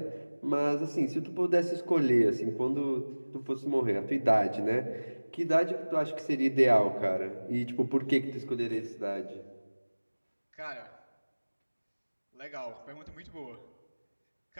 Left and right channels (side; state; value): both; inverted; correlation -1.00